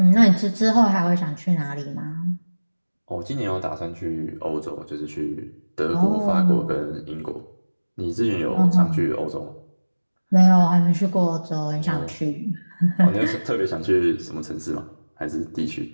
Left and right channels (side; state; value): both; inverted; correlation -1.00